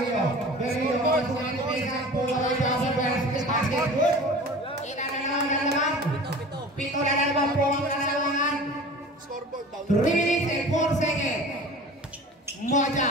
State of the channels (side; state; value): both; normal; correlation 0.40